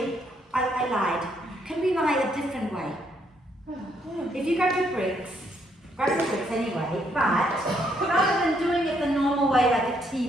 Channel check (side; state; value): both; normal; correlation 0.72